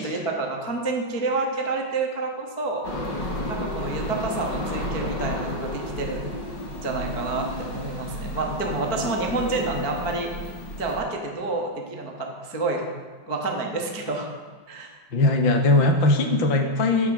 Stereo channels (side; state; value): right; late; 4.6 ms